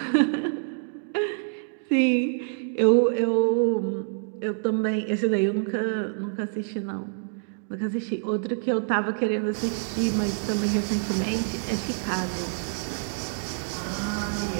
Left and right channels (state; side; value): silent; left; 60 dB below the other